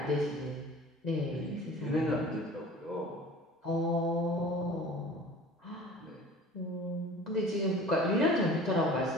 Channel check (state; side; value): normal; both; correlation 0.43